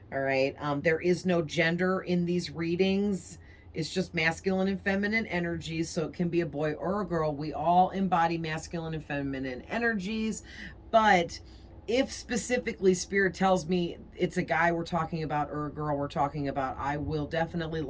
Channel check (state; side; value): identical; both; correlation 1.00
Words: All right. There is no gender in these readings. It's just masculine and feminine energies. So it can be a boy or a girl. We all embody masculine and feminine energies. But if specifically spirit tells me it's a guy we're talking about or a girl we're talking about, I will definitely